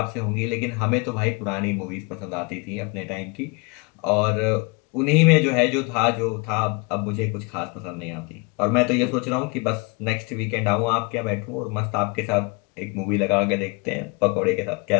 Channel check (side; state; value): right; quieter; 29.6 dB